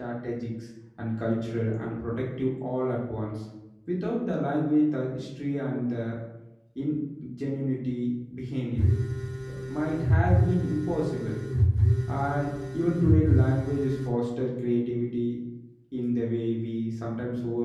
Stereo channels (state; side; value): identical; both; correlation 1.00